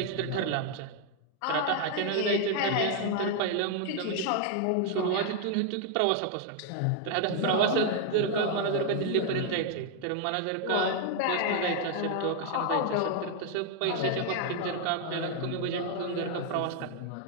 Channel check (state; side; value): different; both; correlation 0.00